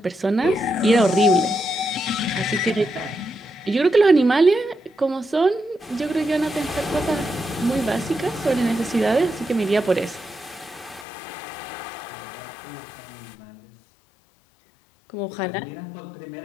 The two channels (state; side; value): drops out; right; at 11.1 s